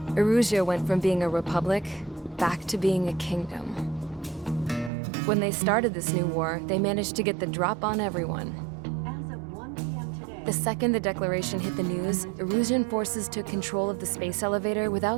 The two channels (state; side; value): drops out; left; at 4.9 s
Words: Erusia went from being a republic back to being a kingdom. When they started this new war, they managed to get the drop on everyone. As of 1 p.m. today, The second the declaration hit the news, Erusian forces took control of the space elevator